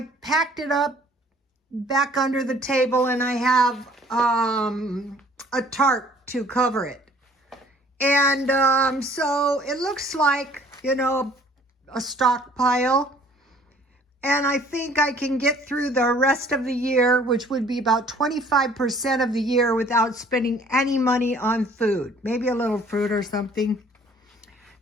packed it up back under the table, and I have a tarp to cover it. And so it looks like, a stockpile. And I think I can get through the rest of the year, which would be about 25% of the year, without spending any money on food. Maybe a little fruit or something.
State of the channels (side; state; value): both; normal; correlation 0.56